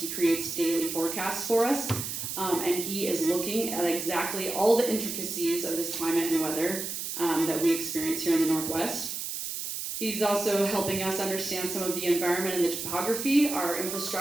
creates daily forecasts for us, and he is looking at exactly all the intricacies of this climate and weather that we experience here in the Northwest. He's also helping us understand some of the environment and the topography. Our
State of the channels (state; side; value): noise; right; hiss, 5 dB below the sound